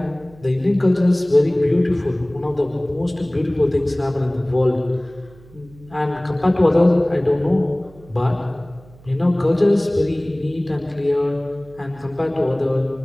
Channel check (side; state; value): right; noise; hum, 24 dB below the sound